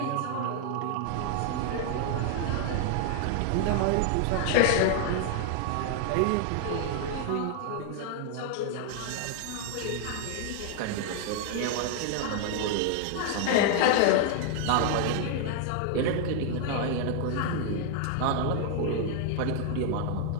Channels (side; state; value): both; different; correlation 0.00